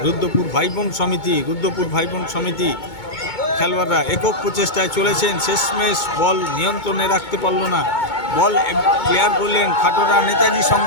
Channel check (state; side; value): late; right; 2.2 ms